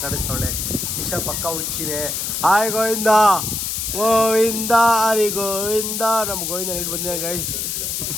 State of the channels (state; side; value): noise; left; hiss, 2 dB below the sound